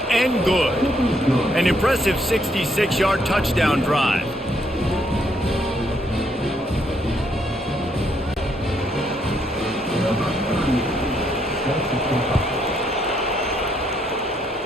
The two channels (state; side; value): normal; both; correlation 0.73